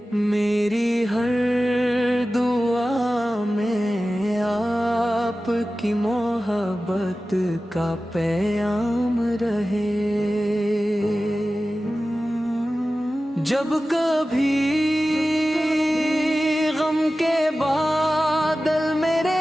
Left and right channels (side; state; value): both; normal; correlation 0.95